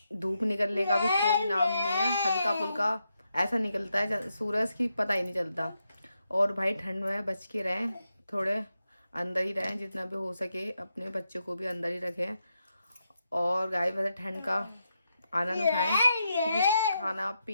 धूप निकलने का भी कोई नाम नहीं है, हल्का फुल्का ऐसा निकलता है सूरज की, पता ही नहीं चलता। और भाई ठंड में बच के रहें, थोड़े अंदर ही रहें, जितना भी हो सके अपने बच्चों को भी अंदर ही रखें। और गाय वैसे ठंड का आनंद उठाएं, क्योंकि खाना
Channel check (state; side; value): inverted; both; correlation -0.84